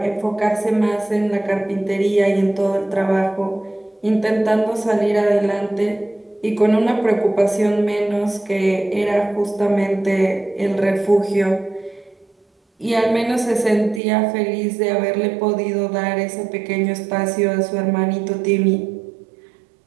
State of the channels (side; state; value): left; drops out; at 14.0 s